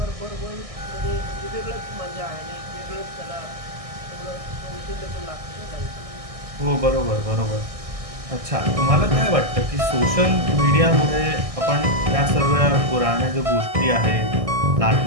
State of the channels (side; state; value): left; late; 1.6 ms